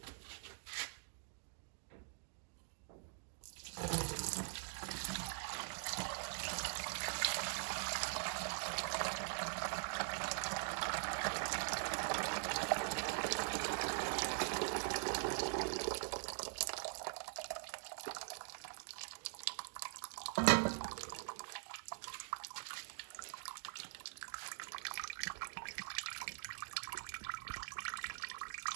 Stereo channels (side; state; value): left; silent; digital silence